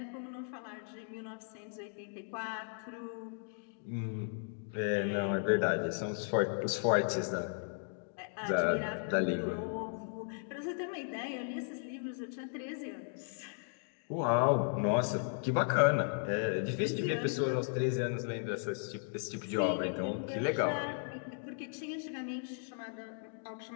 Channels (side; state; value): right; silent; 54 dB below the other